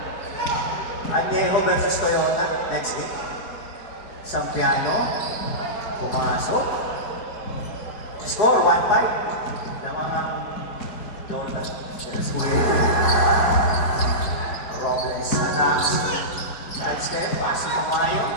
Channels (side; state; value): right; late; 4.9 ms